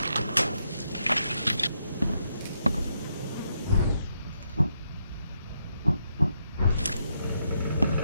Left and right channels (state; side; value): inverted; both; correlation -0.80